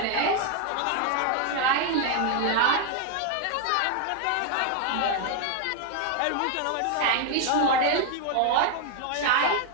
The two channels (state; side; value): different; both; correlation 0.01